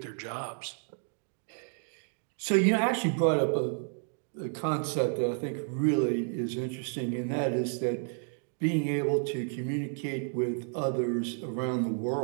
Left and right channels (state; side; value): silent; left; 57 dB below the other